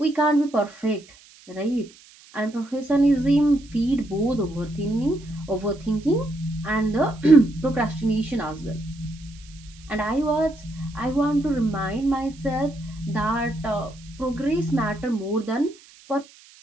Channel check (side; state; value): right; noise; hiss, 24 dB below the sound